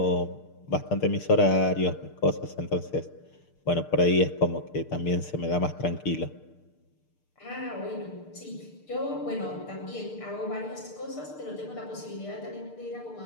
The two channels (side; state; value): right; late; 6.6 ms